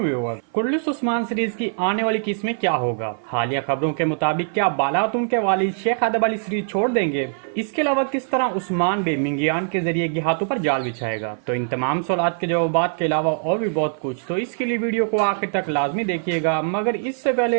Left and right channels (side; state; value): left; silent; 57 dB below the other